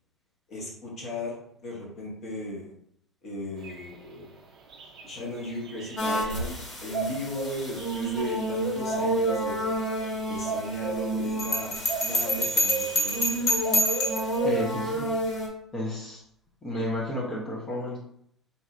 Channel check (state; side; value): normal; both; correlation 0.33